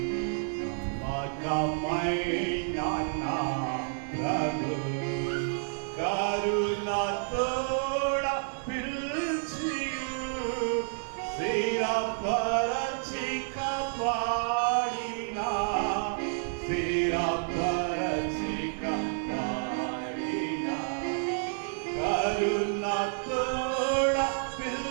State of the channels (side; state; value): left; silent; digital silence